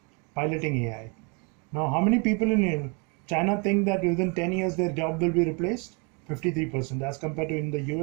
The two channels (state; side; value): quieter; left; 32.3 dB